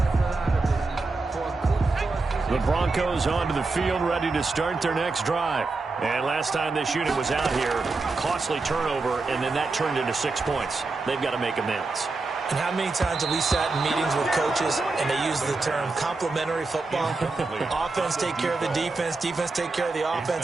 The Broncos onto the field, ready to start their next drive. And last time this unit was out here, costly turnover, and then that turned into 6 points. They've got to make amends. And how many times have we sat in meetings with coaches and they use the term complementary football? Offense take care of the defense, defense take care of the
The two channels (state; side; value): quieter; left; 3.7 dB